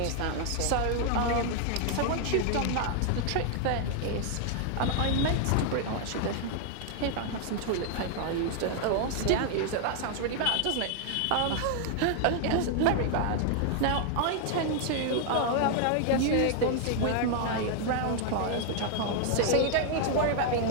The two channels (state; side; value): different; both; correlation 0.00